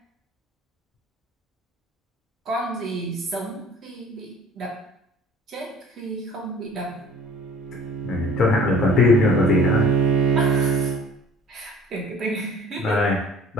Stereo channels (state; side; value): normal; both; correlation 0.49